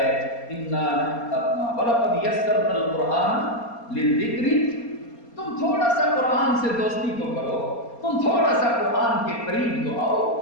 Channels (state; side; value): late; right; 4.3 ms